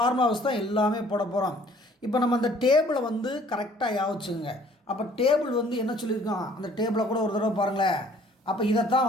தான் எல்லாமே போட போகிறோம். இப்போ நம்ம அந்த டேபிளை வந்து கரெக்டாக யாவச்சுங்க. அப்போ டேபிள் வந்து என்ன சொல்லியிருக்கோம்? அந்த டேபிளை கூட ஒரு தடவை பாருங்களேன். அப்போ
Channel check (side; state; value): both; normal; correlation 0.57